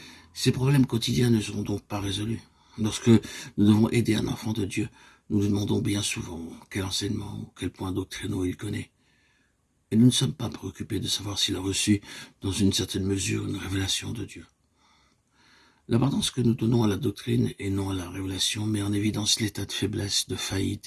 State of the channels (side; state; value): both; identical; correlation 1.00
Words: Ces problèmes quotidiens ne seront donc pas résolus. Lorsque nous devons aider un enfant de Dieu, nous lui demandons bien souvent quel enseignement ou quel point doctrinaux il connaît. Et nous ne sommes pas préoccupés de savoir s'il a reçu, dans une certaine mesure, une révélation de Dieu. L'importance que nous donnons à la doctrine et non à la révélation met en évidence l'état de faiblesse, de